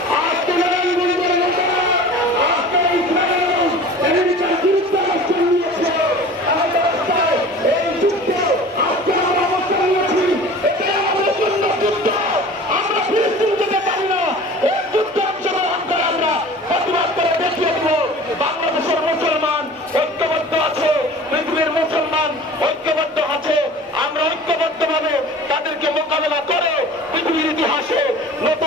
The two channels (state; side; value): normal; both; correlation 0.41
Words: আজকে নারায়ণগঞ্জের লোকেরা আজকে ইসরায়েলের বিরুদ্ধে অবস্থান নিয়েছে। আমাদের রাস্তায় এই যুদ্ধে আজকে আমরা অবস্থান নিয়েছি। এটাই আমাদের জন্য যুদ্ধ। আমরা ফিলিস্তিন যেতে পারি না। এই যুদ্ধে অংশগ্রহণ করে আমরা প্রতিবাদ করে দেখিয়ে দেব বাংলাদেশের মুসলমান ঐক্যবদ্ধ আছে, পৃথিবীর মুসলমান ঐক্যবদ্ধ আছে। আমরা ঐক্যবদ্ধভাবে তাদেরকে মোকাবেলা করে পৃথিবীর ইতিহাসে